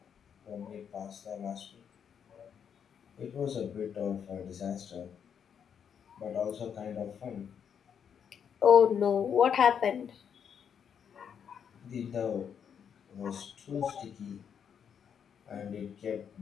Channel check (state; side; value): quieter; right; 7.8 dB